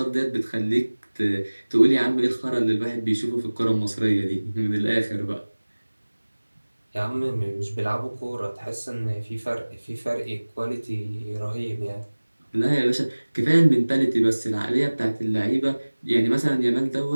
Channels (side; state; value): both; inverted; correlation -1.00